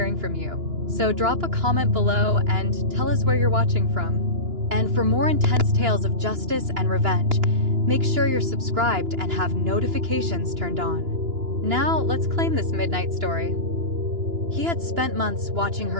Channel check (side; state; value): left; late; 2.9 ms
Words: from you, so drop a comment below and tell us where you're watching from. And for more intense tales of justice and revenge, make sure you're subscribed and have notifications turned on. Now, let's claim this midnight story. He had spent months watching